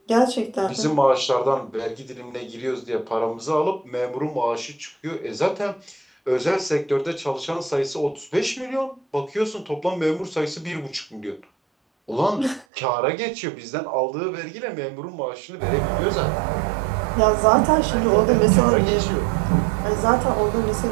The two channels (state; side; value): drops out; left; at 12.7 s